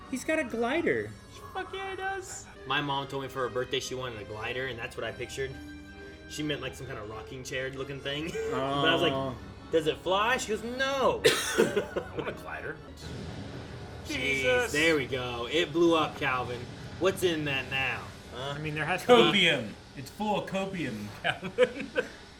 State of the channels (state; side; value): identical; both; correlation 1.00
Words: He's got a glider. Fuck yeah, he does. My mom told me for her birthday she wanted a glider, and that's what I pictured. She meant like some kind of rocking chair looking thing. But I was like, does it fly? She goes, no. I want a glider. Jeez, there we go. It blew up, Calvin. What's in that now? I mean, there has to be, Copium. It's full of copium, Calvin. there